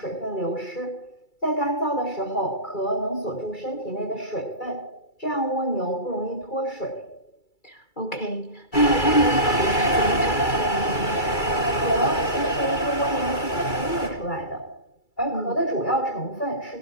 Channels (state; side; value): late; right; 2.3 ms